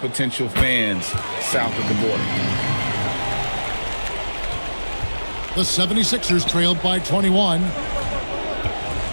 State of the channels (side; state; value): both; inverted; correlation -1.00